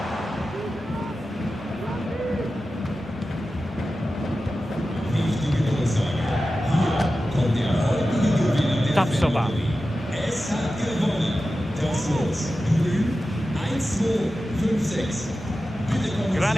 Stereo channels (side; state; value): both; normal; correlation 0.93